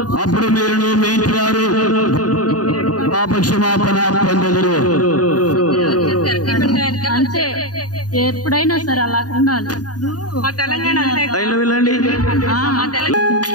అప్పుడు మీరును మీ ఇంటి వారు పాపక్షమాపణ పొందెదరు. అంతే, ఎప్పుడైనా సరే అలా ఉండాలి. మా తెలంగాణ వెళ్ళండి.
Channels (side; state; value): right; late; 0.68 ms